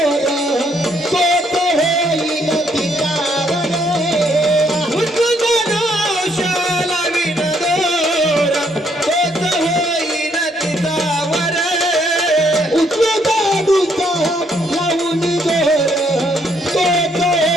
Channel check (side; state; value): both; normal; correlation 0.70